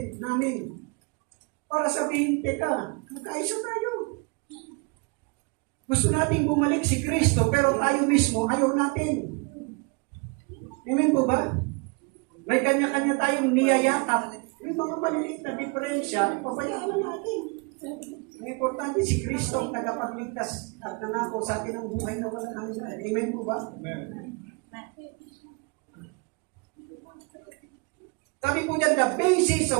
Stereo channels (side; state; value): left; quieter; 31.2 dB